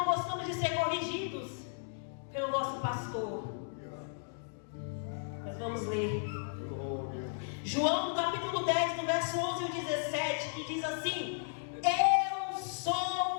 gostamos de ser corrigidos pelo nosso pastor. Mas vamos ler João, no capítulo 10, no verso 11 e 17, que diz assim: eu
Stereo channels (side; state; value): right; silent; digital silence